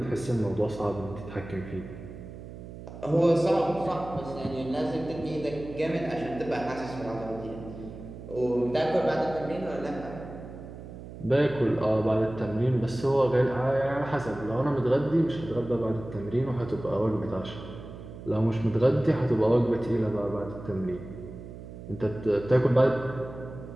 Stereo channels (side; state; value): right; noise; hum, 13 dB below the sound